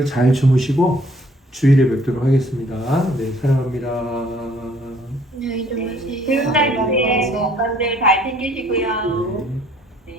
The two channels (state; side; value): normal; both; correlation 0.60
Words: 잘 주무시고 주일에 뵙도록 하겠습니다. 네, 사랑합니다. 안녕히 주무세요. 주일날 건들 잘 챙기시고요.